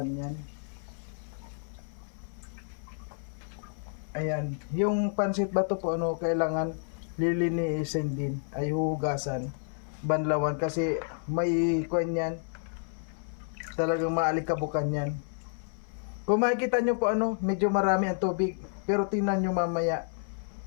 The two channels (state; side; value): silent; right; 57 dB below the other